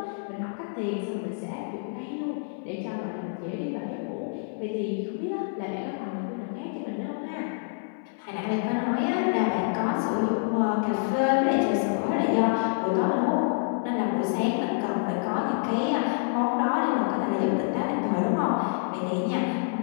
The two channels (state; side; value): silent; right; 60 dB below the other